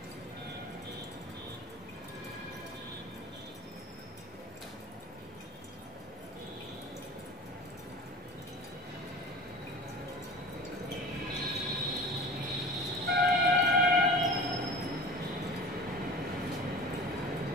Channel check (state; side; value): normal; both; correlation 0.37